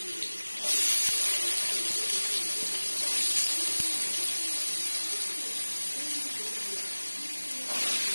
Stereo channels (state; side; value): inverted; both; correlation -1.00